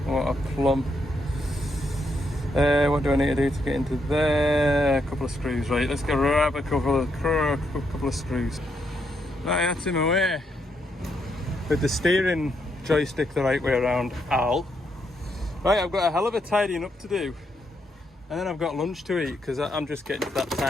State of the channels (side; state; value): both; normal; correlation 0.78